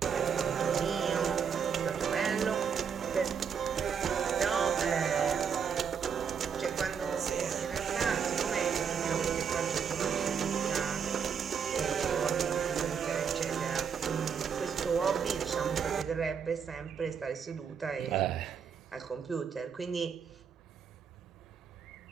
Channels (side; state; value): left; quieter; 6.9 dB